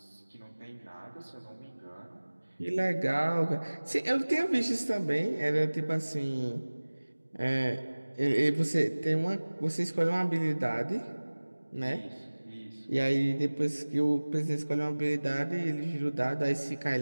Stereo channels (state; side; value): inverted; both; correlation -1.00